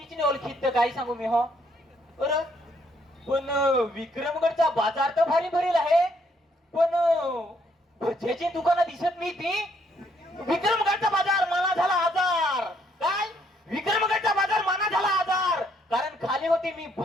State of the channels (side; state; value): both; normal; correlation 0.69